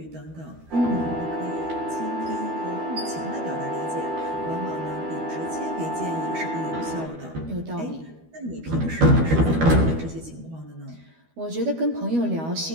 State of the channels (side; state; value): left; late; 12 ms